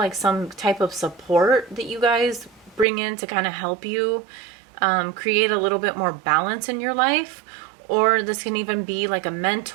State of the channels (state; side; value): drops out; left; at 2.9 s